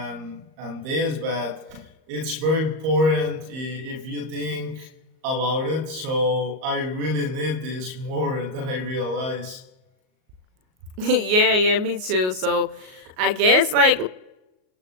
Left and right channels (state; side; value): late; left; 38 ms